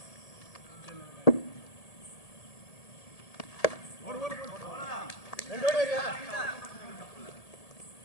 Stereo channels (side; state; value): right; late; 1.8 ms